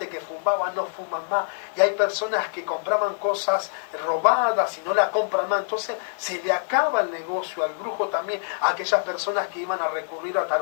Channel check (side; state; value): right; silent; 62 dB below the other